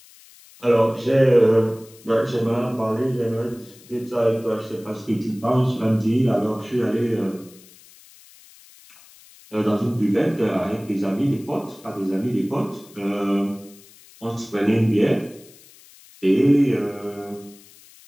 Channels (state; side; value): noise; left; hiss, 24 dB below the sound